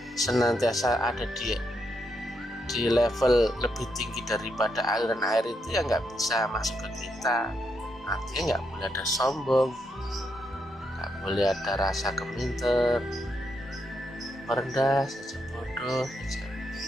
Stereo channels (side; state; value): both; normal; correlation 0.80